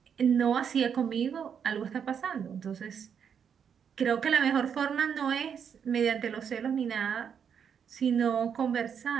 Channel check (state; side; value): quieter; left; 7.5 dB